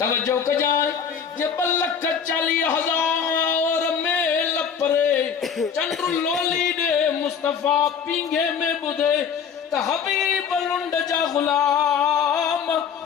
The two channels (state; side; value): quieter; right; 7.1 dB